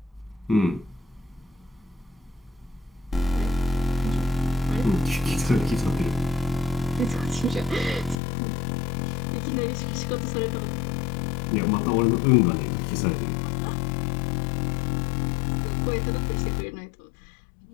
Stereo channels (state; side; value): drops out; right; at 8.2 s